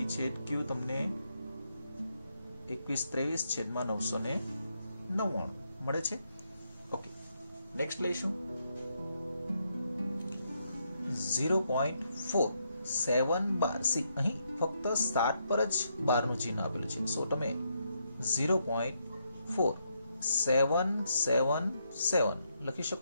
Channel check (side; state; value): both; inverted; correlation -0.78